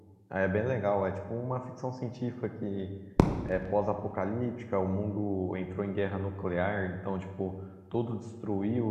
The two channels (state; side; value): identical; both; correlation 1.00